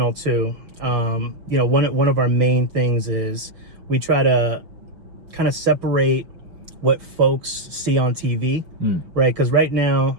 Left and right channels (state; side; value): late; left; 6.0 ms